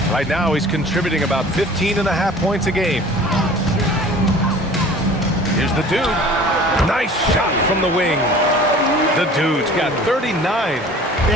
Right now, he's contributing about 15.5 points a game. Here's the dude. Nice shot from the wing. The dude's got 39.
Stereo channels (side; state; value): both; normal; correlation 0.45